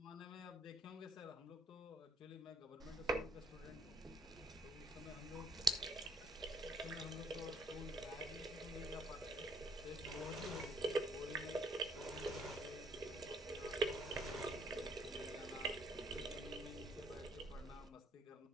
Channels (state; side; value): normal; both; correlation 0.65